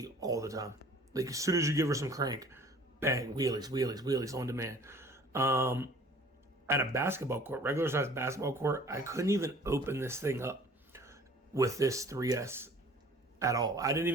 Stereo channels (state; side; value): normal; both; correlation 0.50